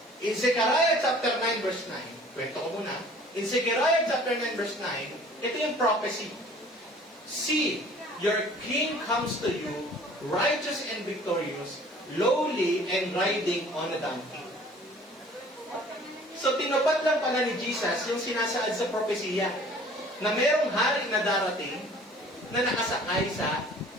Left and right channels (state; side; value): normal; both; correlation 0.50